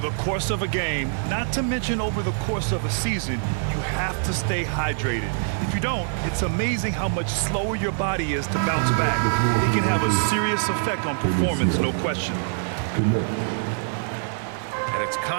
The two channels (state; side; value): silent; left; 62 dB below the other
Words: the course of a game, not to mention over the course of a season, you have to stay hydrated. If you don't, it's amazing how much slower your body is to bounce back. It can have a serious effect on performance, no question. And it's